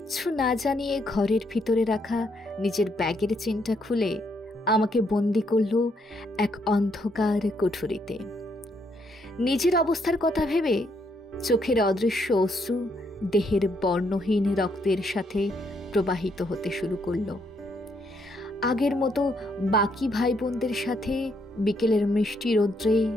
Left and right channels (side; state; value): both; normal; correlation 0.74